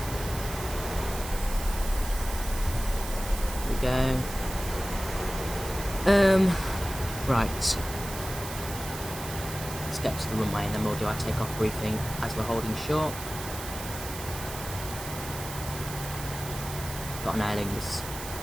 There we go. Right. Let's get to the runway and then we'll do our takeoff briefing as we're holding short. Got an airling just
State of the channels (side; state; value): right; noise; hiss, 10 dB below the sound